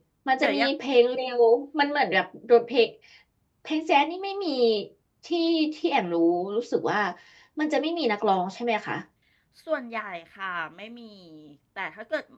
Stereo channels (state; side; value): identical; both; correlation 1.00